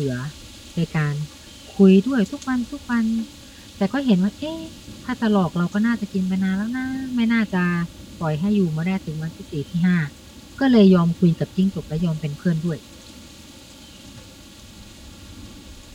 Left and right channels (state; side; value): identical; both; correlation 1.00